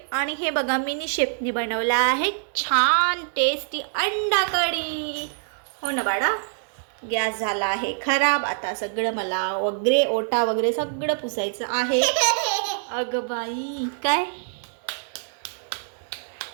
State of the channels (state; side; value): silent; left; 62 dB below the other